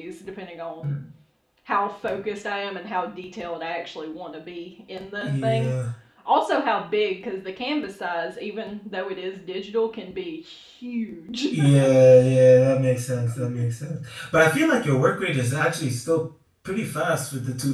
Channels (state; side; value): identical; both; correlation 1.00